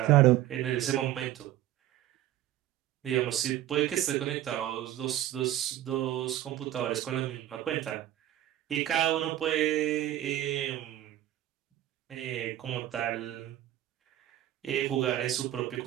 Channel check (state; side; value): quieter; left; 13.3 dB